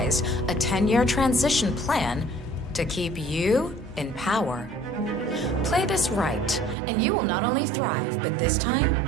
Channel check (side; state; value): left; drops out; at 6.8 s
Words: a 10-year transition plan to keep you in power. Play this right, and you will not only thrive, but this time,